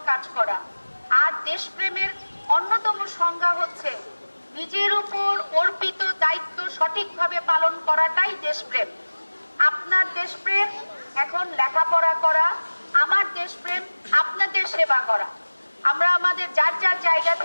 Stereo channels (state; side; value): inverted; both; correlation -1.00